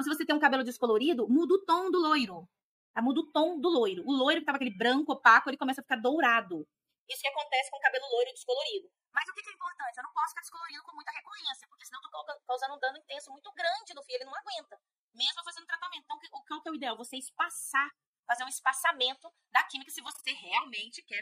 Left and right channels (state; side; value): identical; both; correlation 1.00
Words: se você tem um cabelo descolorido, muda o tom do loiro. Tá? Muda o tom do loiro. O loiro que tava aquele branco, opaco, ele começa a ficar dourado. Isso que acontece com o cabelo loiro descolorido. Mas o que é importante? Eu não posso ficar descolorido com muita recorrência, porque senão eu tô causando um dano intenso muito grande no fio, ele não aguenta, mesmo fazendo tratamento. Então, qual que é o ideal? Você espaçar fazer um espaçamento da química se você realmente